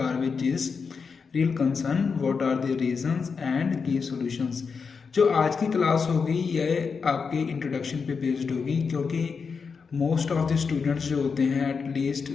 is real concern, what are the reasons and key solutions. जो आज की क्लास होगी ये आपके इंट्रोडक्शन पे बेस्ड होगी, क्योंकि मोस्ट ऑफ द स्टूडेंट्स जो होते हैं एटलीस्ट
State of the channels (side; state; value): right; quieter; 5.4 dB